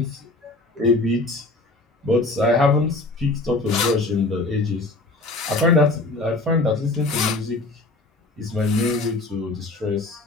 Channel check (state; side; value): quieter; right; 3.1 dB